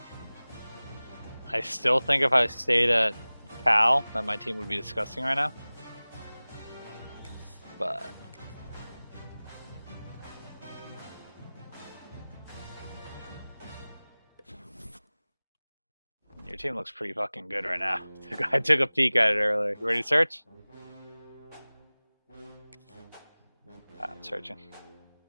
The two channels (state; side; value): inverted; both; correlation -0.99